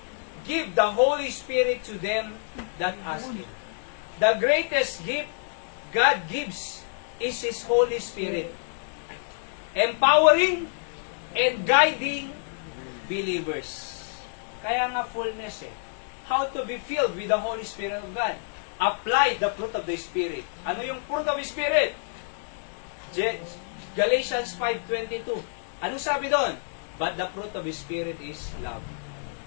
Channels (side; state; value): right; silent; digital silence